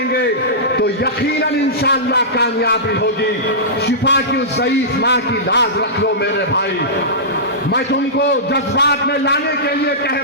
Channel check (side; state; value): both; normal; correlation -0.17